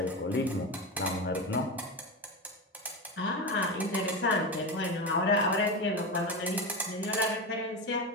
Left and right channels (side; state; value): both; normal; correlation 0.18